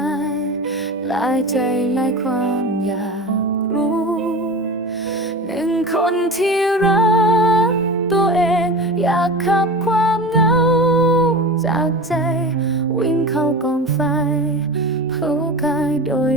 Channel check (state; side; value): normal; both; correlation 0.31